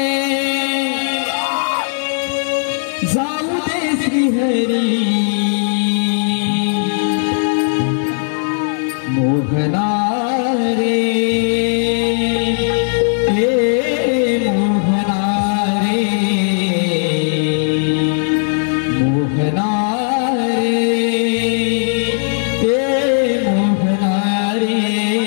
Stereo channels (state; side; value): silent; right; 64 dB below the other